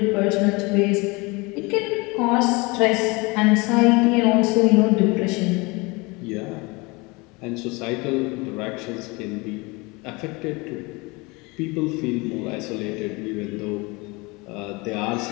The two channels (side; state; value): right; quieter; 25.8 dB